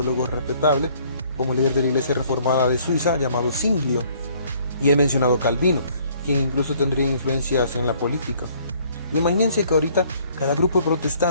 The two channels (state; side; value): inverted; both; correlation -0.61